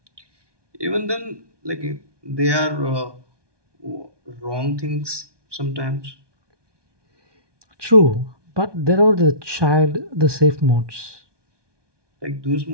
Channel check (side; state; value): left; late; 1.2 ms